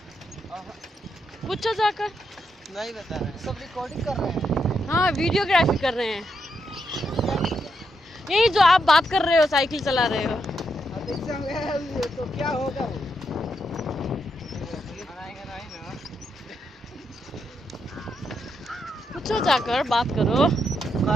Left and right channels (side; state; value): both; normal; correlation 0.81